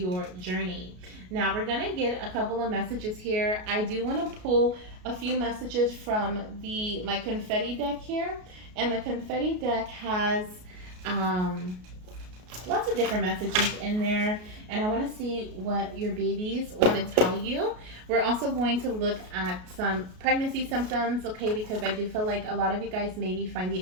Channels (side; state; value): left; late; 33 ms